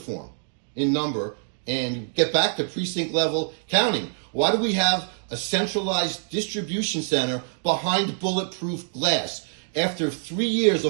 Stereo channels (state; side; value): silent; left; digital silence